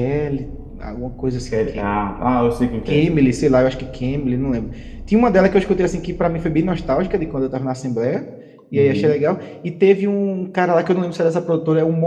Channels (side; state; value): both; identical; correlation 1.00